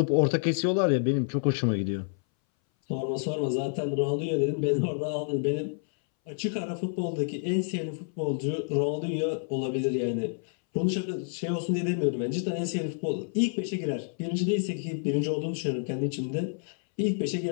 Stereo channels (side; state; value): right; silent; 59 dB below the other